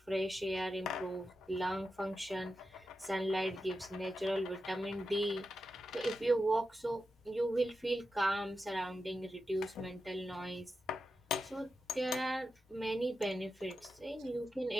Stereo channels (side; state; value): both; normal; correlation 0.90